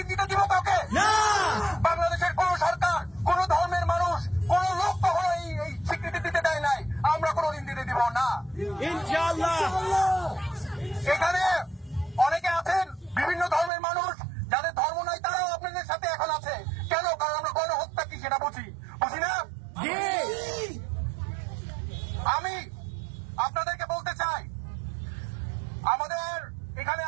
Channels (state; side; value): drops out; left; at 13.7 s